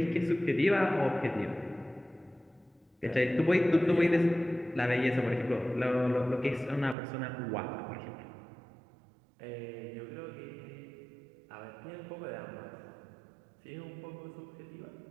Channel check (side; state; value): left; drops out; at 7.0 s